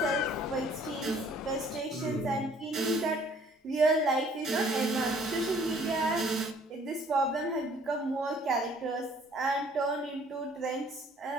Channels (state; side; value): normal; both; correlation 0.58